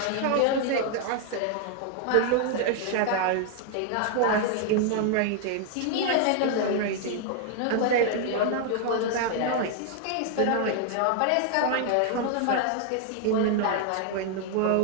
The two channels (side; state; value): both; different; correlation 0.00